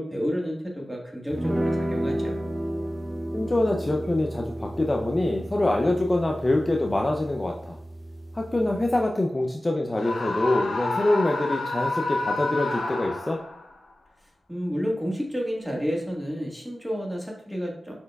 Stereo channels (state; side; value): normal; both; correlation 0.96